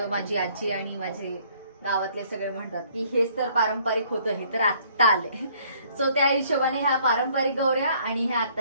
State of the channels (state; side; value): inverted; both; correlation -0.61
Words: माझी आजी आणि माझे गावातले सगळे म्हणतात की हेच तर पारंपरिक होतं, हे तर आत्ता आलंय. सो त्या हिशोबाने ह्या पारंपरिक गौऱ्या आणि ह्या